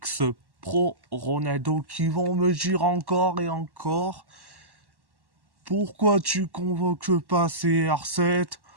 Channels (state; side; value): late; left; 1.1 ms